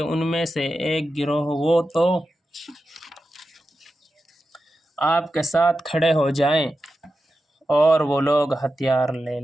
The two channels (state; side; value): normal; both; correlation 0.91